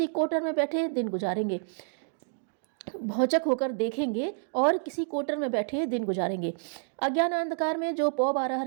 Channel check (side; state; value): left; silent; digital silence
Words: कोटर में बैठे दिन गुजारेंगे। अज्ञान अंधकार में जो पौ बारह